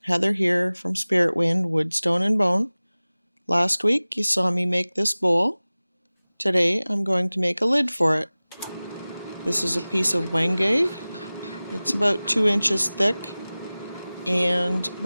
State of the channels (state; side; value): inverted; both; correlation -0.98